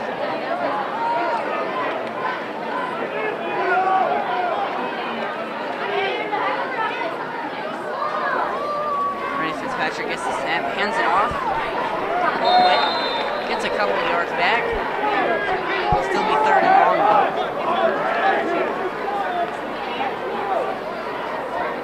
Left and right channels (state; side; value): identical; both; correlation 1.00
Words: Patrick gets the snap, hands it off. Quick, gets a couple of yards back. It'll still be 3rd and long.